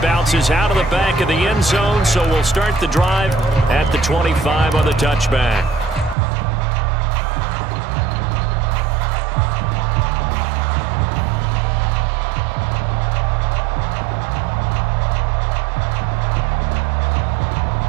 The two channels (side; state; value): left; drops out; at 6.2 s